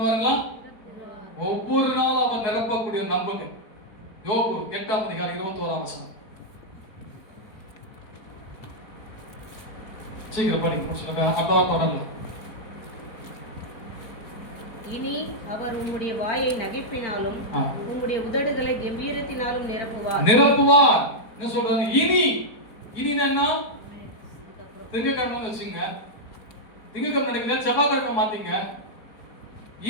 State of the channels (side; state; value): right; late; 4.5 ms